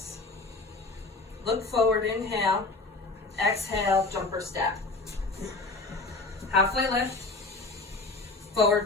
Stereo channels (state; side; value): quieter; right; 3.5 dB